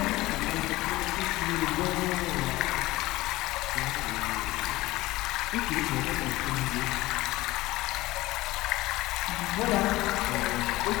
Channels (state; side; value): quieter; right; 18.8 dB